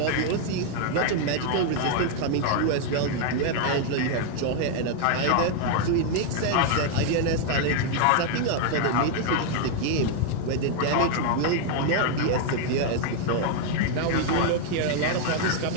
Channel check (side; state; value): both; different; correlation 0.00